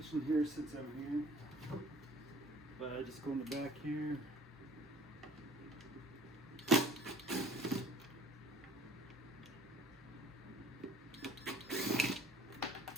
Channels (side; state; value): both; normal; correlation 0.52